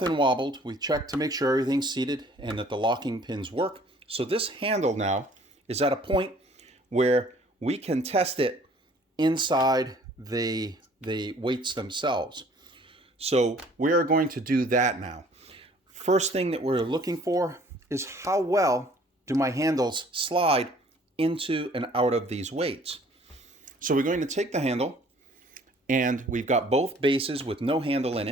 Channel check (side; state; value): both; normal; correlation 0.55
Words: wobbled. We've checked to make sure everything's seated and that the locking pins work. So this handle now is at a point where we can test it inside the weights themselves. So we're going to do that now. First thing that we're looking for is how well do my handles slide into and out of these weights. So we're going to take the handle, and we've got both bases with no handle in